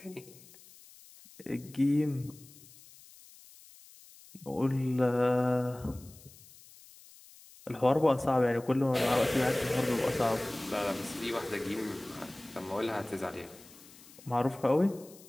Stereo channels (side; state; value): left; noise; hiss, 22 dB below the sound